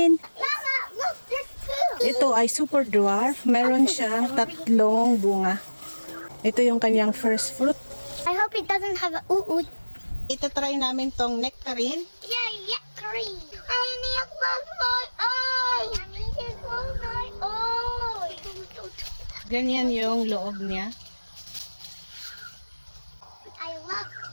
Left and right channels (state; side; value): inverted; both; correlation -1.00